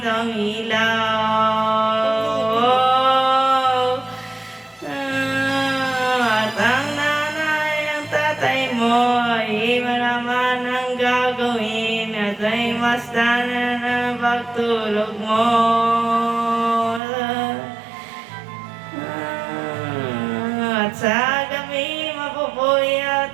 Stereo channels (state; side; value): drops out; left; at 17.0 s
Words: ilaw. At ang nanay, ang tatay mo, ay iba naman ang gagawin, at ay basta na ng pagtulog mo. At sa gabi